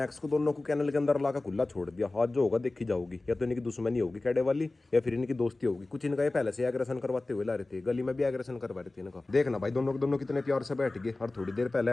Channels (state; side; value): quieter; right; 3.1 dB